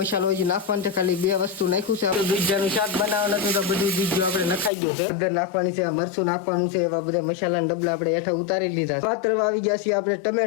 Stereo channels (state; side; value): drops out; right; at 4.7 s